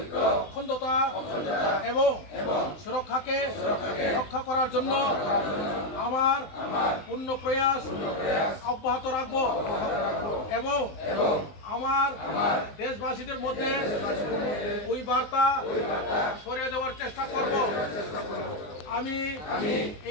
অখণ্ডতা এবং সুরক্ষাকে রক্ষা করার জন্য আমার পূর্ণ প্রয়াস অব্যাহত রাখব এবং আমার দেশবাসীদের মধ্যে ওই বার্তা ছড়িয়ে দেওয়ার চেষ্টা করব আমি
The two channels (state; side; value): late; right; 19 ms